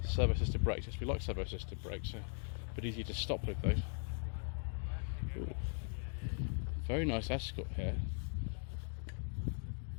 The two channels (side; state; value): right; silent; 51 dB below the other